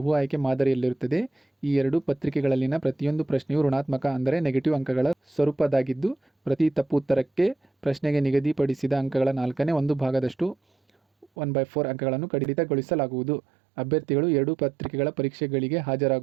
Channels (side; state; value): left; drops out; at 11.2 s